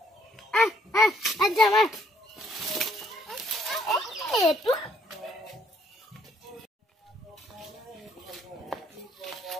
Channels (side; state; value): both; normal; correlation 0.66